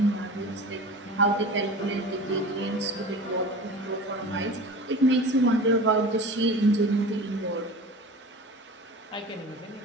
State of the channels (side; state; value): both; normal; correlation 0.36